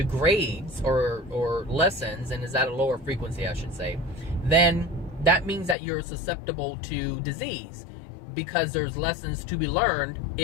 or lessens and is at a lower frequency, I should say, then that means that you're susceptible to disease, because there's lessons to be learned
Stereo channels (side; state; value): right; drops out; at 5.8 s